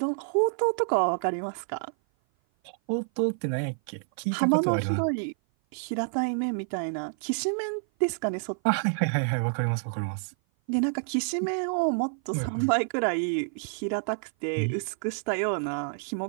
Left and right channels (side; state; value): left; silent; 56 dB below the other